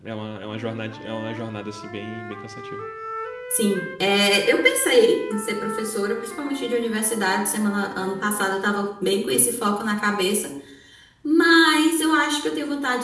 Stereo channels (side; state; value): both; identical; correlation 1.00